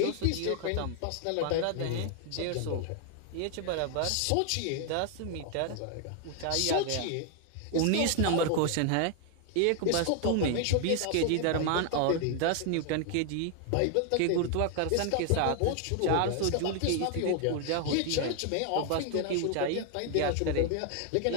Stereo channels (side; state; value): both; different; correlation 0.00